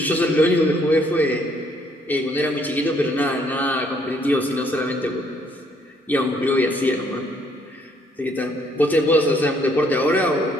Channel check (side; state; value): both; normal; correlation 0.67